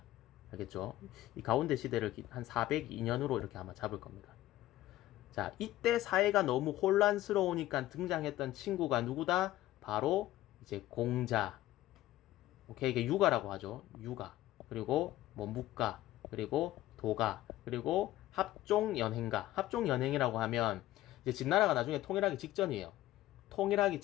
알겠죠? 이 가운데 시대를 한 402년으로 이렇게 아마 잡을 겁니다. 자, 이때 사회가 너무 혼란스러우니까 등장했던 친구가 누구다? 바로 이제 공자. 오케이, 이게 유가라고 하죠. 유가. 그리고 묵가. 그리고 도가. 그리고 합종연행가. 합종연행이라고 하면 이제 진나라가 나중에 통일하기 직전이에요. 통일하기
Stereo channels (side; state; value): right; quieter; 15.2 dB